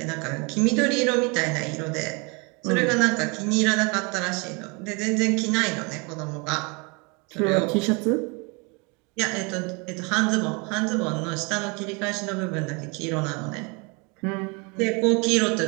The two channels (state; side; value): quieter; left; 30.4 dB